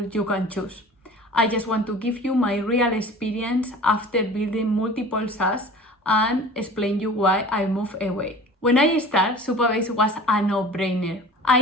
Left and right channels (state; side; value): normal; both; correlation 0.42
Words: you can choose. I just want to give you my real experience after building multiple SaaS and explain you why I moved away. When I started, Supabase was a no-brainer. I